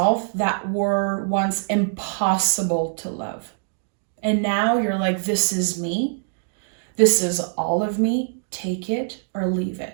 that were once impossible to love. And now you're like, this is me. This is all of me. Take it or leave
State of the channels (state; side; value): silent; left; digital silence